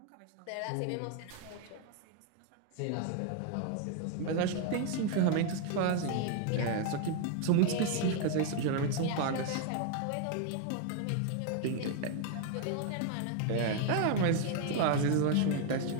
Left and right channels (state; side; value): different; both; correlation 0.01